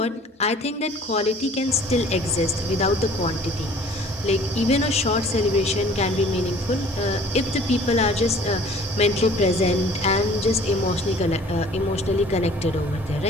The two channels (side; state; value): both; normal; correlation 0.51